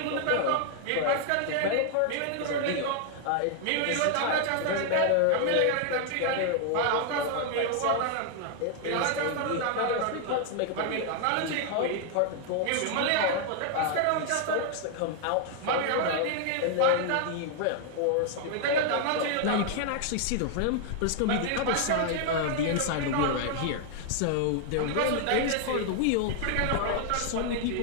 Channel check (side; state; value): both; different; correlation 0.00